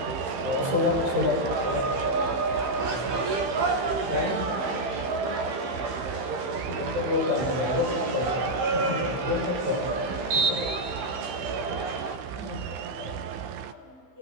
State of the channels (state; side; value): late; left; 15 ms